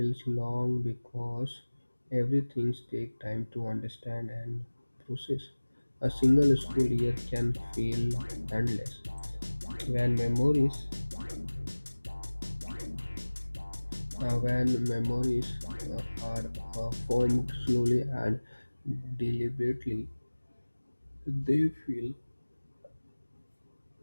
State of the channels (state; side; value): inverted; both; correlation -1.00